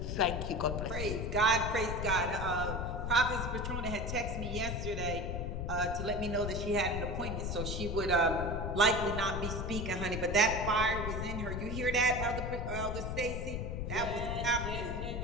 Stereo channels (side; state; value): left; noise; rumble, 3 dB below the sound